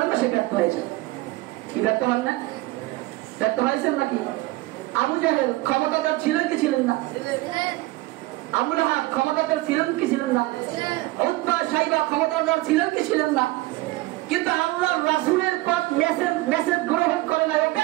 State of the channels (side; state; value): left; quieter; 19.7 dB